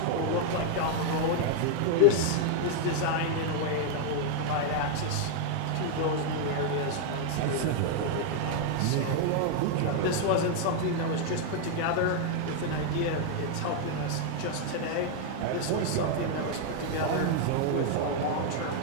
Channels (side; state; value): both; different; correlation 0.00